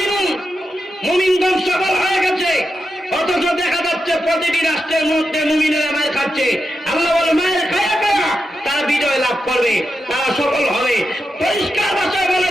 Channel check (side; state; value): both; normal; correlation 0.88